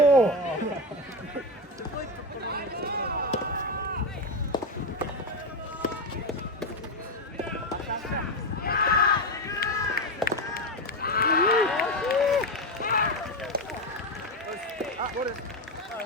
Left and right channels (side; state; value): both; normal; correlation 0.13